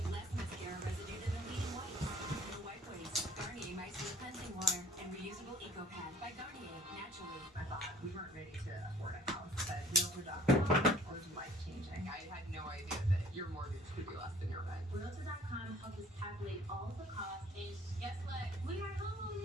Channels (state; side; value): normal; both; correlation 0.54